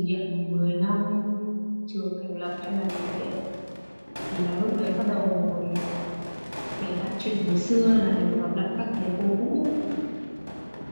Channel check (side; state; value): both; inverted; correlation -1.00